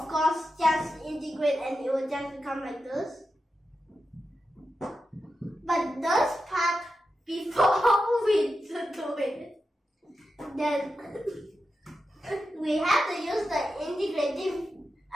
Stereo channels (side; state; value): both; normal; correlation 0.90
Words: course just integrate and it will just become like this. But this part, before we do it, then we have to use the